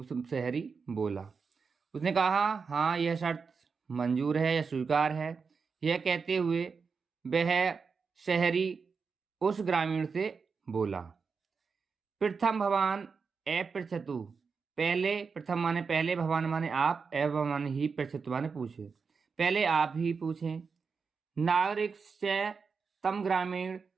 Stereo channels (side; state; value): left; quieter; 5.3 dB